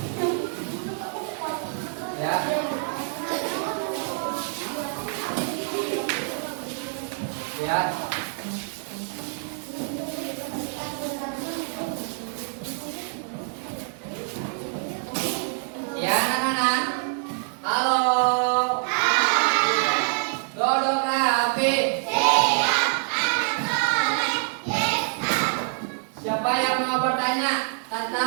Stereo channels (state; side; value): silent; left; 56 dB below the other